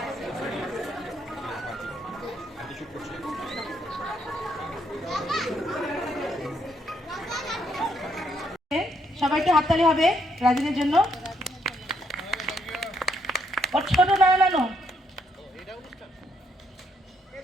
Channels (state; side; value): normal; both; correlation 0.73